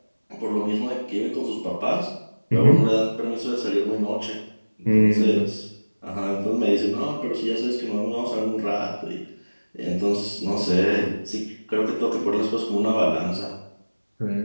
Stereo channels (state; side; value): inverted; both; correlation -1.00